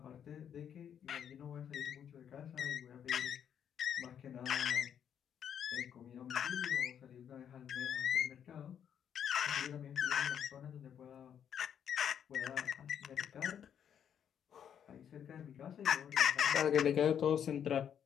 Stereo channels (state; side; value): quieter; right; 8.7 dB